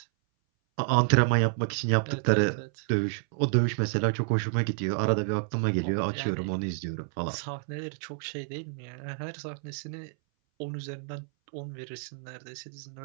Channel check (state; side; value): silent; left; 58 dB below the other